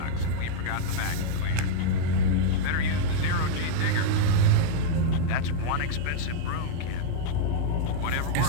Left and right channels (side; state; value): both; different; correlation -0.01